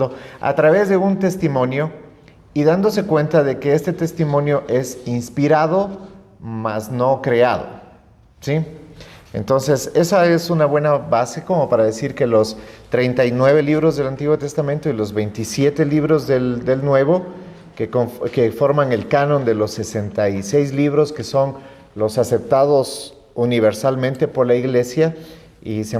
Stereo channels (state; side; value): identical; both; correlation 1.00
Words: a través de un testimonio y dándose cuenta de que este testimonio es inspirado, mas no creado, ¿sí? Entonces, esa es una buena base como para decir que los 39 libros del Antiguo Testamento y los 27 libros del Nuevo, que forman el canon de los 66 libros que son los aceptados universalmente por la Iglesia y se